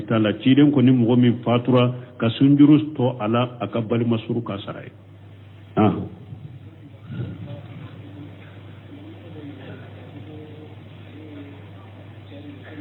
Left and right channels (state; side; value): identical; both; correlation 1.00